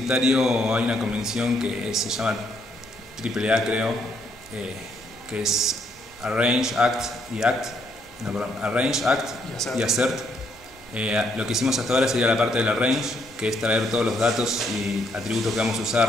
hay una convención que se llama AAA, creo, que es Arrange, Act y Act. No, perdón, Arrange, Act y Assert. Lo que hicimos hasta ahora sería la parte del Arrange, que es traer todos los datos y atributos que vamos a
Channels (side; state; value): both; normal; correlation 0.72